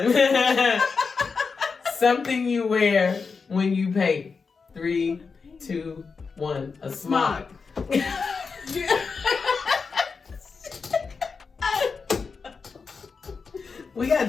Something you wear when you paint. 3, 2, 1. A smock. We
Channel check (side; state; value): right; quieter; 5.0 dB